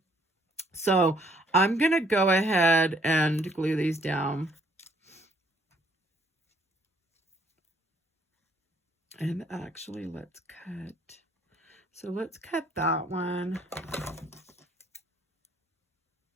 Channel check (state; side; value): normal; both; correlation 0.65